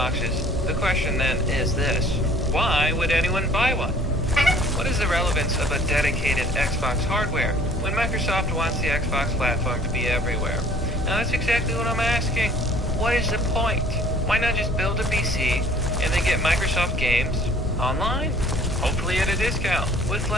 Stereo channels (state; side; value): normal; both; correlation 0.53